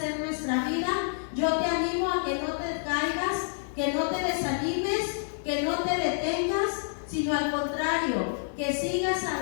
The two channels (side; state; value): right; silent; digital silence